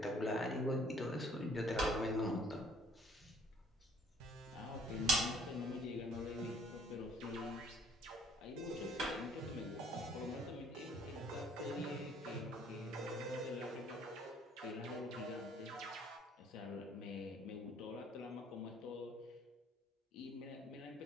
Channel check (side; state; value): both; normal; correlation 0.61